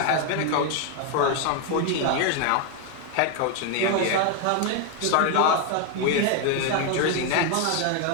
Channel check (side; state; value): both; different; correlation 0.01